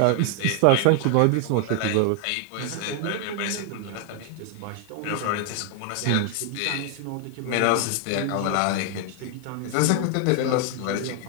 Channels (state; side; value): different; both; correlation 0.00